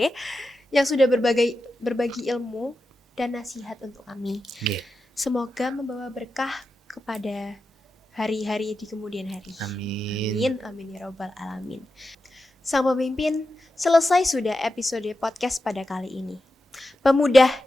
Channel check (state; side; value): normal; both; correlation 0.90